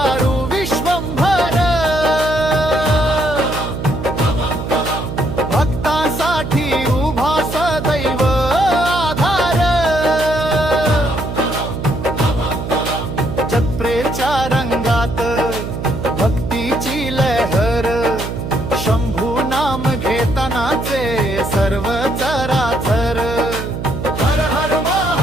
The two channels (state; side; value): noise; right; hum, 6 dB below the sound